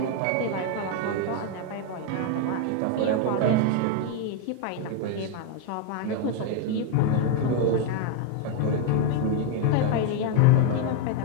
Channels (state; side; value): different; both; correlation 0.01